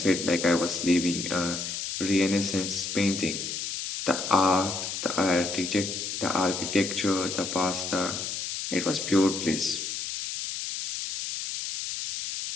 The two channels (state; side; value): noise; left; hiss, 4 dB below the sound